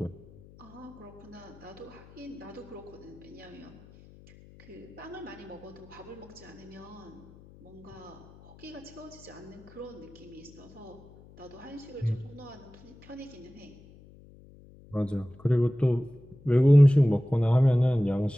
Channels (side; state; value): left; noise; hum, 22 dB below the sound